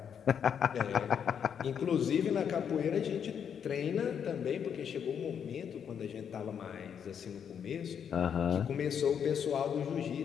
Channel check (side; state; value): right; quieter; 7.9 dB